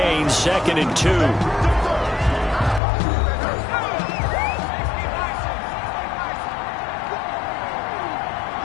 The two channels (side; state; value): right; drops out; at 2.8 s